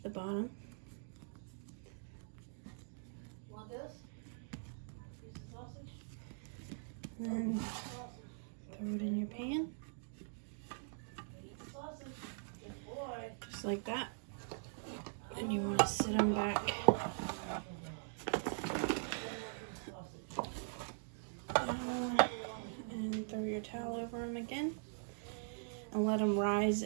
the bottom. Want this? Piece of sausage? And then throw it in your pan. Eat the sausage. Good boy. Just like that. And you want to sit them back and throw your towel over them again and let them rise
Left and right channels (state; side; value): silent; left; digital silence